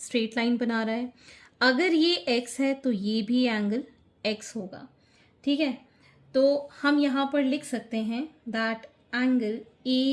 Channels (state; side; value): identical; both; correlation 1.00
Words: स्ट्रेट लाइन बना रहा है. अगर ये x है तो ये भी एंगल x होगा. ठीक है, तो हम यहाँ पर लिख सकते हैं that angle